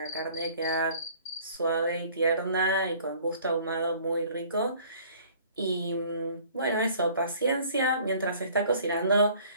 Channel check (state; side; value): inverted; both; correlation -0.53